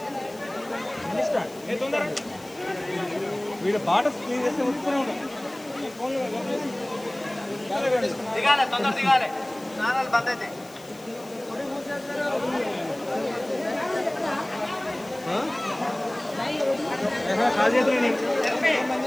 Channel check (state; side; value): noise; left; hiss, 22 dB below the sound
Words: వీడు పాట స్క్రీన్ చేస్తే వస్తూనే ఉంటాం. దిగాలి, తొందర దిగాలి, స్నానాలు బంద్ అయితే.